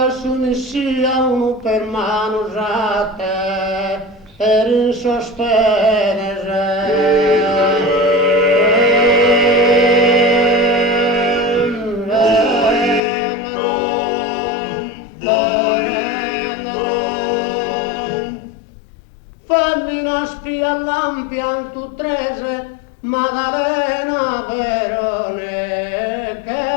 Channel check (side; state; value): right; drops out; at 13.0 s